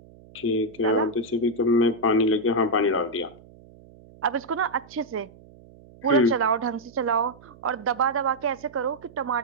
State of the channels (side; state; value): right; noise; hum, 23 dB below the sound